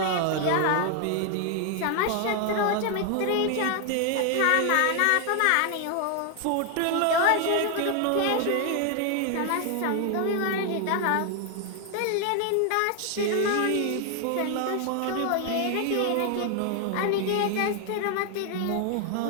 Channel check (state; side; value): different; both; correlation 0.00